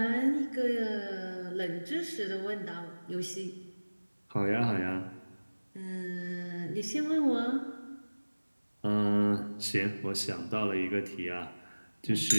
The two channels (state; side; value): inverted; both; correlation -1.00